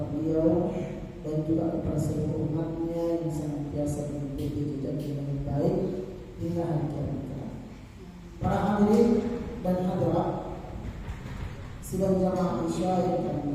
beliau, dan juga kepada seluruh umatnya yang senantiasa mengikuti jejak yang baik hingga hari kiamat kelak. Para hadirin dan hadirat sidang jamaah Isya yang kami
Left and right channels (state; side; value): identical; both; correlation 1.00